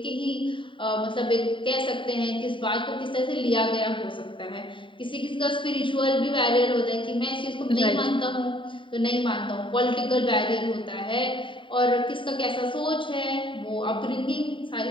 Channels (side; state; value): right; late; 0.24 ms